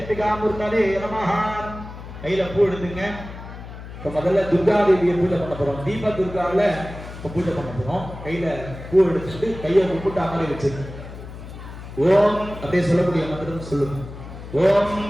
மூர்த்ததே நமஹ. கையில பூ எடுத்துங்க. இப்ப முதல்ல துர்கா தேவியை பூஜை பண்ண போறோம். தீப துர்கால இப்ப பூஜை பண்ண போறோம். கையில பூ எடுத்துட்டு கையை கும்பிட்டு அமரை வச்சுங்க. ஓம் அப்படியே சொல்லக்கூடிய மந்திரம் சொல்லுங்க. ஓம்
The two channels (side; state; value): left; noise; hum, 13 dB below the sound